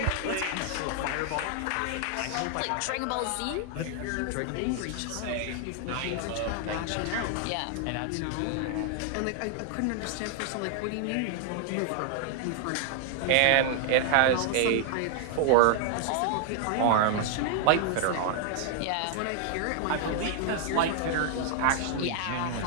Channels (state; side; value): different; both; correlation 0.00